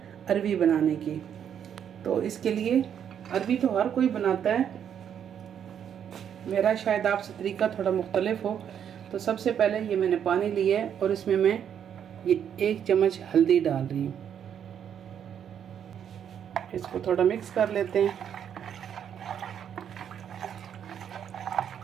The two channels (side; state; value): left; quieter; 8.8 dB